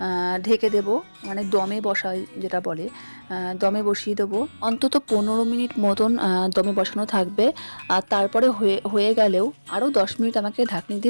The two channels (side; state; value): both; inverted; correlation -1.00